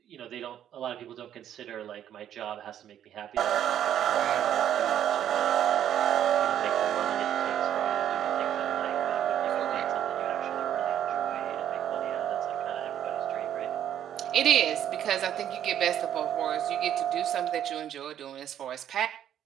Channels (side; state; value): left; quieter; 10.4 dB